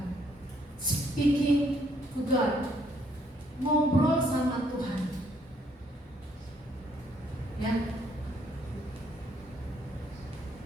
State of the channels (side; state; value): both; normal; correlation 0.68